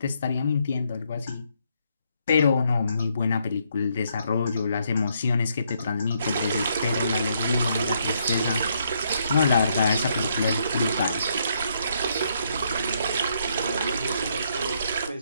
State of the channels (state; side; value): inverted; both; correlation -0.74